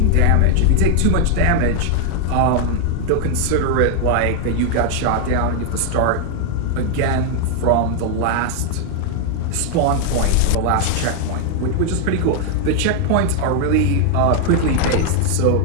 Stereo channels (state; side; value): different; both; correlation 0.00